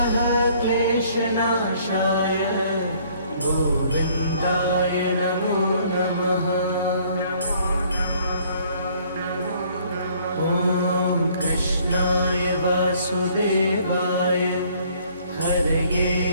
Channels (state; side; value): inverted; both; correlation -0.60